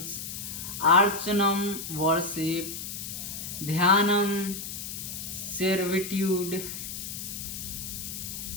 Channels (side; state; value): left; noise; hiss, 7 dB below the sound